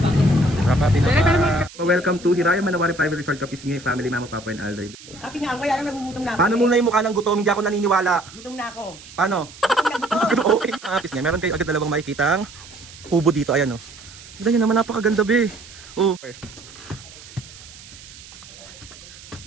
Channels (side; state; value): right; noise; hiss, 18 dB below the sound